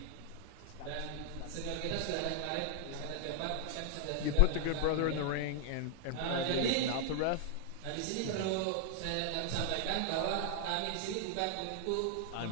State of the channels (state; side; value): different; both; correlation 0.00